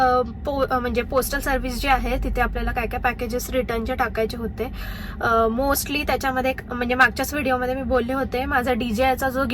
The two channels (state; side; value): identical; both; correlation 1.00